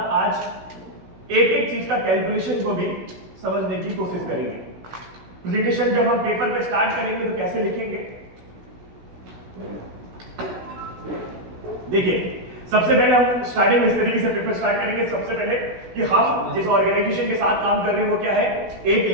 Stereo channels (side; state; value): left; late; 16 ms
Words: आज एक एक चीज का कैलकुलेशन को भी समझने की कोशिश करेंगे। प्रेजेंटेशन जब हम पेपर पे स्टार्ट करेंगे तो कैसे लिखेंगे? देखिए, सबसे पहले हम स्टार्टिंग इस तरीके से पेपर स्टार्ट करेंगे। सबसे पहले कि हम जिस ऑर्गेनाइजेशन के साथ काम कर रहे हैं वो क्या है? एक